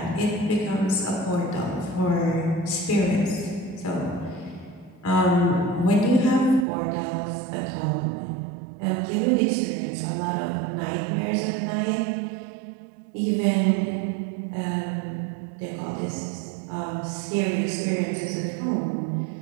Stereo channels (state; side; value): drops out; left; at 6.7 s